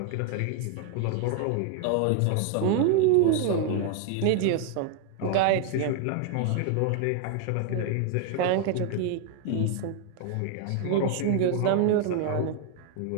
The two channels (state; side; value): different; both; correlation 0.00